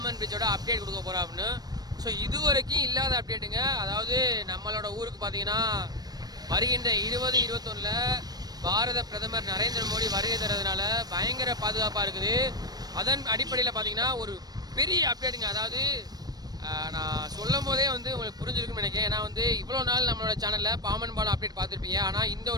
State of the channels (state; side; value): late; left; 0.19 ms